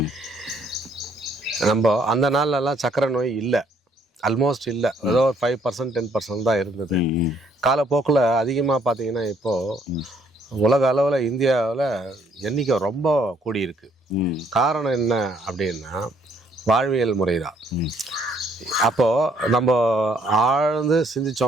நம்ம அந்த நாள்லலாம் சக்கரை நோய் இல்லை, ஆல்மோஸ்ட் இல்லை. ஏதோ ஒரு 5% 10% தான் இருந்தது. காலப்போக்கில் அதிகமாக பார்த்தீங்கன்னா இப்போது உலக அளவில் இந்தியாவில் எண்ணிக்கை ரொம்ப கூடியிருக்கு. காரணம் என்ன அப்படின்னா வாழ்வியல் முறை தான். அப்போது நம்ம ஆழ்ந்து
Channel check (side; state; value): both; normal; correlation 0.67